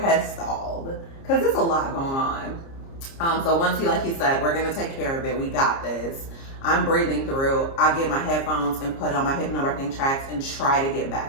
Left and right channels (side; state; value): right; late; 30 ms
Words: has stalled because there's a lot going on. So once like he said, we're gonna take care of it. We got this. I'm breathing through. I get my headphones and put on my Hypnobirthing tracks and try to get